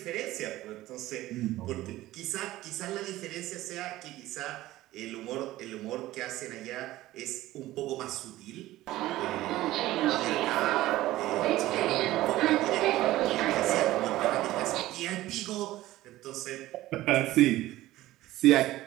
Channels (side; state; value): left; quieter; 16.1 dB